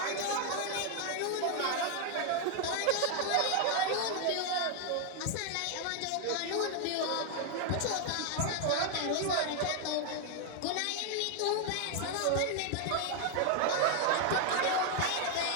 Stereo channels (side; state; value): both; different; correlation 0.00